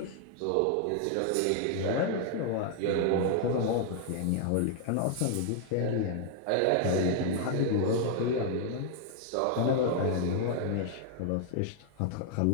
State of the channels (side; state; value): both; different; correlation 0.00